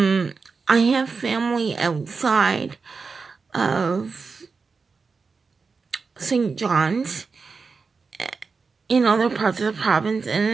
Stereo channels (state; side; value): quieter; left; 4.8 dB